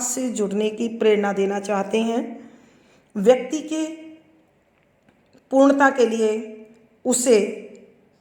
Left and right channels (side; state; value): both; identical; correlation 1.00